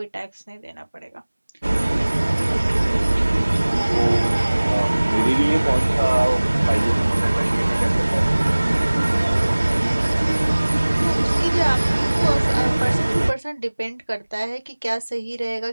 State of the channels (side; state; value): both; inverted; correlation -1.00